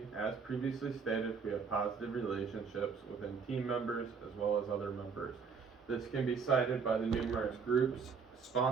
as previously stated, we have positive relationships within team members as well as other members. This can be cited by the numerous groups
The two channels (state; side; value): quieter; left; 5.7 dB